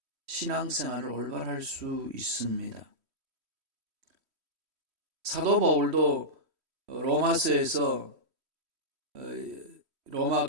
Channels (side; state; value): left; late; 3.1 ms